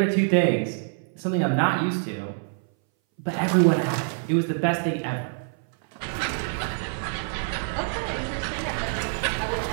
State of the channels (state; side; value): silent; left; 59 dB below the other